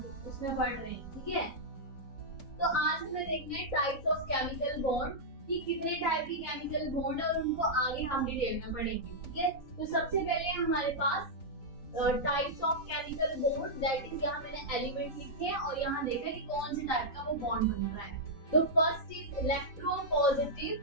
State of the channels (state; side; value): late; right; 3.9 ms